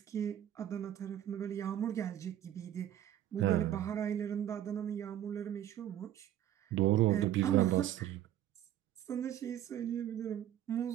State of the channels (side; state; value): left; quieter; 11.6 dB